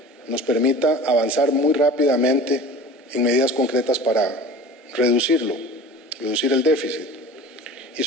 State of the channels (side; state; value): both; normal; correlation 0.39